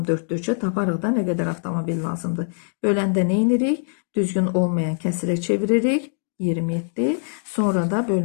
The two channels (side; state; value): right; silent; digital silence